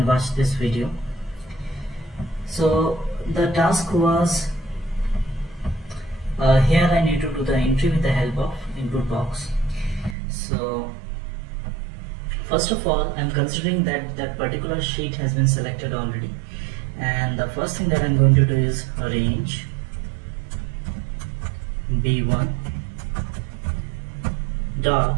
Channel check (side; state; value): left; drops out; at 10.2 s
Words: watch this video. So the task was here I need to do the entry with the help of input box. So first of all, I'm considering that that particular sheet has been selected already, and the first thing that I'm going to do is range B1